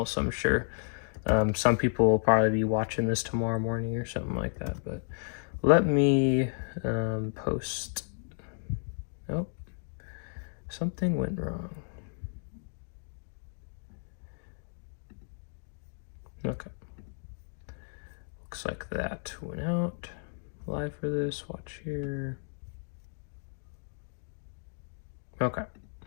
so I'm sure some people will probably be watching this tomorrow morning or something like that. But let me post. Oh, something went wrong. Okay. Looks like that went out. Live for this. Watch here. Okay.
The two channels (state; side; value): silent; right; digital silence